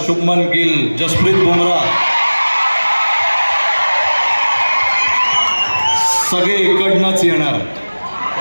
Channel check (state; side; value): inverted; both; correlation -1.00